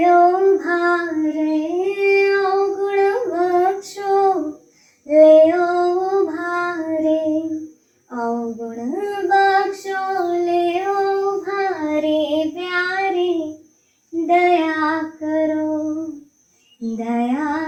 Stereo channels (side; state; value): both; identical; correlation 1.00